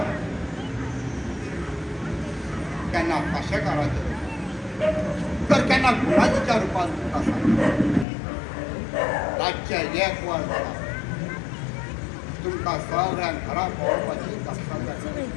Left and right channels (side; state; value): right; drops out; at 8.1 s